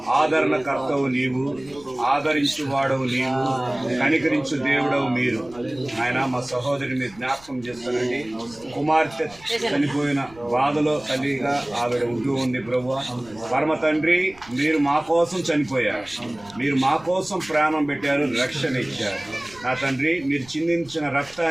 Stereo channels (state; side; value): noise; right; rumble, 24 dB below the sound